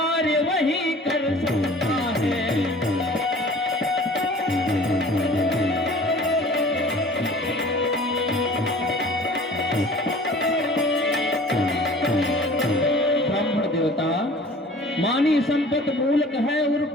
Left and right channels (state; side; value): normal; both; correlation 0.46